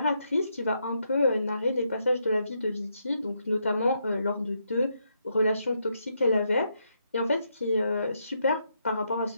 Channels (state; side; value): inverted; both; correlation -0.79